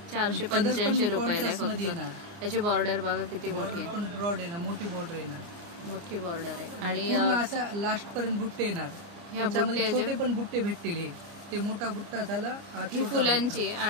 485 रुपयाला येणार। त्याची बॉर्डर बघा किती मोठी आहे, पण ब्रॉड आहे ना, मोठी बॉर्डर आहे ना, मोठी बॉर्डर आहे आणि पूर्ण असा लास्ट पर्यंत बुट्टे येणार। याच्यामध्ये छोटे पण बुट्टे भेटतील। हे ते मोठा बुट्टा झाला, ही फुलांची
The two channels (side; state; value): left; late; 29 ms